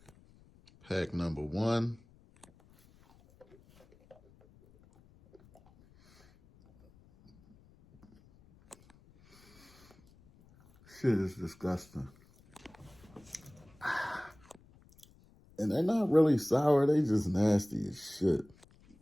Pack number 1. Shit is disgusting. And they're not really sour, they just nasty as shit.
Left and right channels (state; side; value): noise; left; rumble, 27 dB below the sound